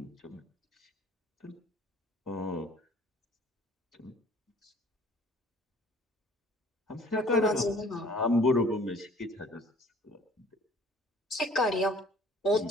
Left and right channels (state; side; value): normal; both; correlation 0.54